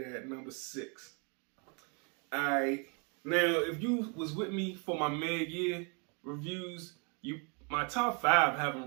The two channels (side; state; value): left; quieter; 35.1 dB